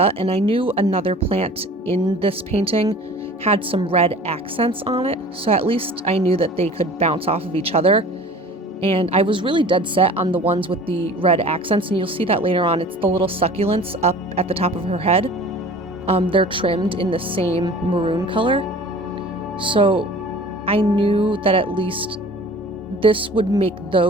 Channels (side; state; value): both; normal; correlation 0.44